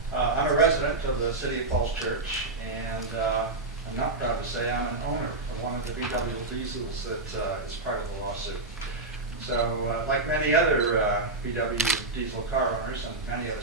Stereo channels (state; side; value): quieter; left; 3.1 dB